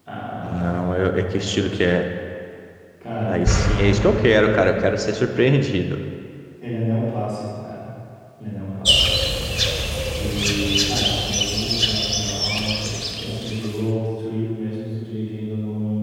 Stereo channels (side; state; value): both; identical; correlation 1.00